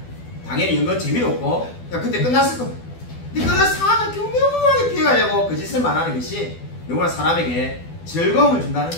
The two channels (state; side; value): late; right; 12 ms